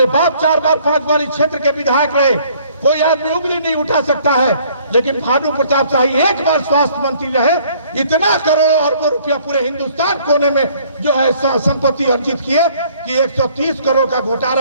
बाप 4 बार 5 बार इस क्षेत्र के विधायक रहे, कोई आदमी उंगली नहीं उठा सकता है। लेकिन भानु प्रताप शाही 1 बार स्वास्थ्य मंत्री रहे, इतना करोड़ों अरबों रुपया पूरे हिंदुस्तान कोने में जो है संपत्ति अर्जित किए कि 130 करोड़ का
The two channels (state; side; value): inverted; both; correlation -0.59